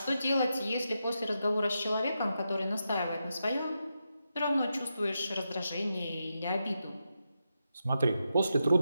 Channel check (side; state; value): both; inverted; correlation -0.86